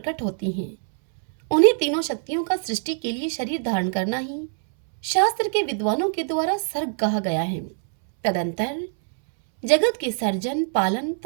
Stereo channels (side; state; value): left; silent; 63 dB below the other